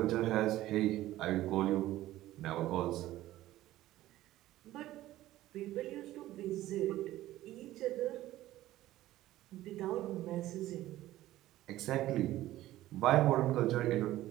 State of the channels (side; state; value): left; quieter; 15.2 dB